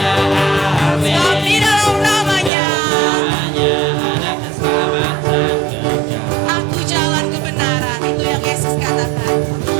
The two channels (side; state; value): left; drops out; at 2.5 s